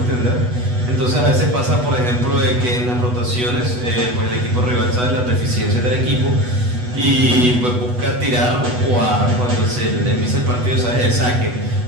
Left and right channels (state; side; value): late; left; 8.1 ms